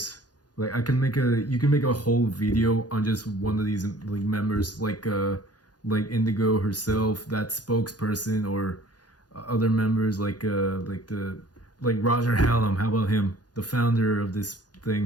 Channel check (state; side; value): late; right; 0.69 ms